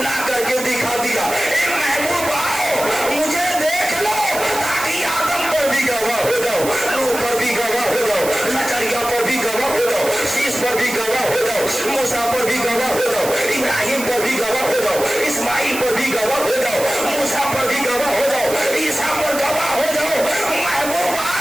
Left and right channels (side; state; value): right; noise; hiss, 8 dB below the sound